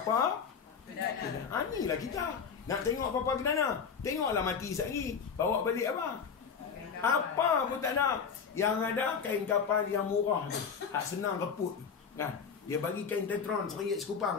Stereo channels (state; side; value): quieter; right; 6.4 dB